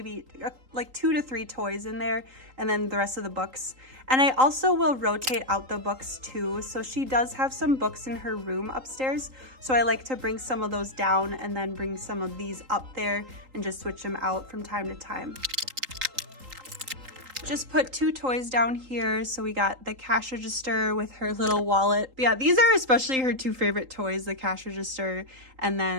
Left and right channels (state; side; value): late; left; 3.8 ms